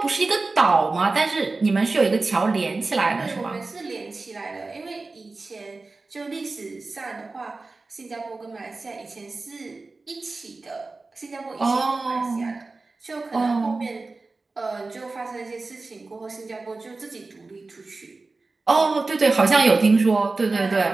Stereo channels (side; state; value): left; quieter; 3.6 dB